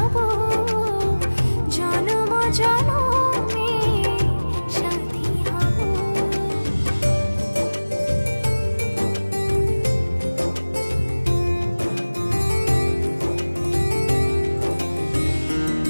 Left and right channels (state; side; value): inverted; both; correlation -1.00